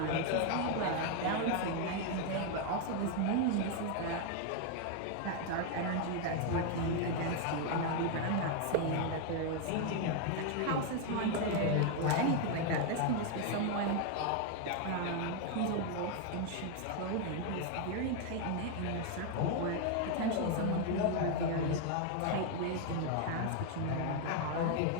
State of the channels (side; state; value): both; different; correlation 0.01